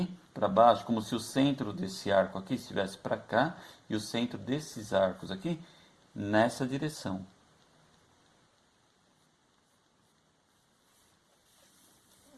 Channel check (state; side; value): identical; both; correlation 1.00